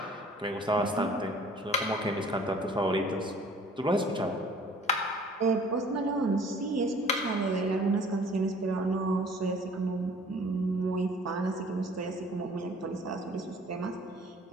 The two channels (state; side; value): normal; both; correlation 0.52